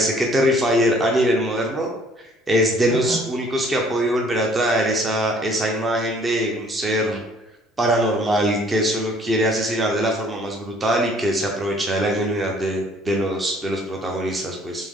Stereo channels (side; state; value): both; normal; correlation 0.58